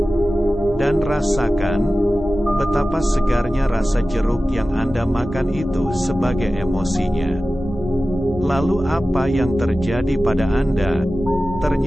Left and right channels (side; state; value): both; normal; correlation 0.95